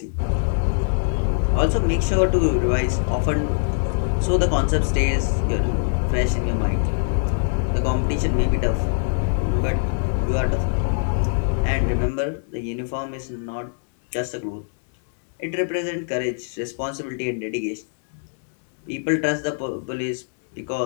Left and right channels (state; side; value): silent; right; digital silence